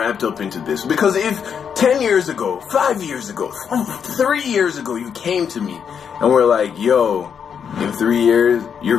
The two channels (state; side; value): quieter; right; 7.3 dB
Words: up into this. Because if 10 years ago, 5 years ago, 3 years ago, you came to me and were like, yo, in 3 years,